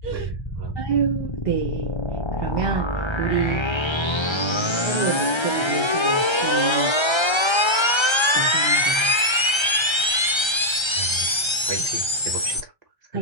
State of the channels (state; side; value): late; right; 1.3 ms